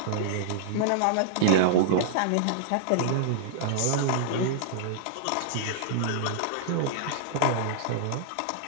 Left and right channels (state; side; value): different; both; correlation -0.01